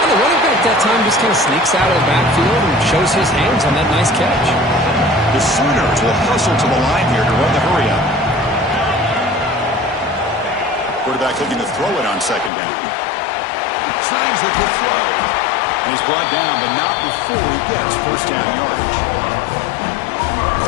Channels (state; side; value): drops out; right; at 12.5 s